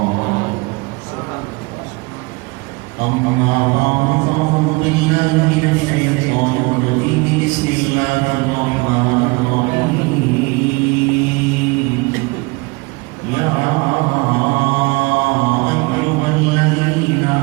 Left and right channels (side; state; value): left; quieter; 26.3 dB